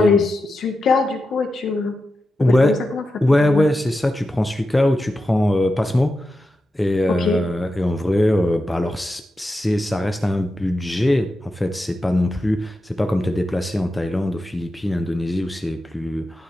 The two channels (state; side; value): normal; both; correlation 0.90